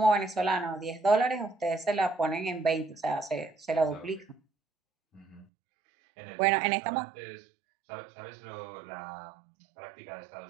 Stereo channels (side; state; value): left; drops out; at 5.5 s